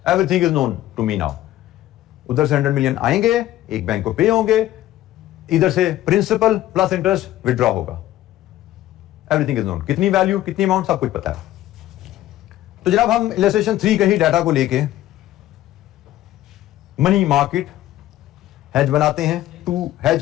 Everything is known to me now. उधर से 100 मिलियन आएंगे, एक बैंक को पे होंगे, इधर से प्रिंसिपल प्लस इंटरेस्ट विड्रॉ होगा, एवरीथिंग इज नोन। कितनी वैल्यू, कितनी अमाउंट, सब कुछ पता है। तो जनाब, हम इलस्ट्रेशन 3 के ही डाटा को लेके मनी मार्केट हेज बनाते हैं टू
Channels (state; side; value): quieter; right; 14.2 dB